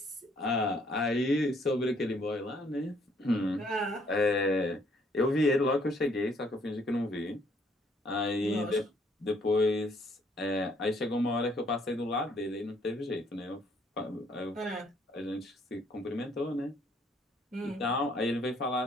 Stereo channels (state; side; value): normal; both; correlation 0.65